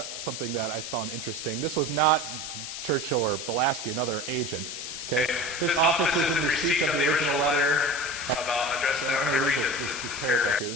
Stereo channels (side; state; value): left; noise; hiss, 7 dB below the sound